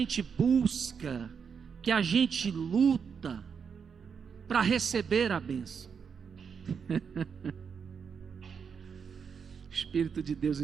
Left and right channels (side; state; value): left; quieter; 6.5 dB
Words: busca, que a gente luta para receber a bênção. Espírito de Deus